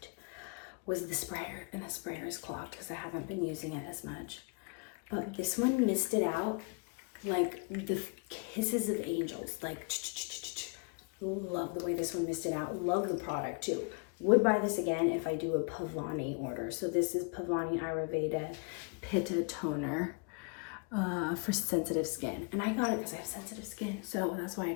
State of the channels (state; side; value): quieter; right; 33.9 dB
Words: was the sprayer, and the sprayer is clogged because I haven't been using it as much. But this one misted out like the kisses of angels, like love the way this one misted out. Love the product too. Would buy this again if I do a Pavani order. So this is Pavani Ayurveda Pitta toner for sensitive skin, and I got it because I have sensitive skin, so that's why I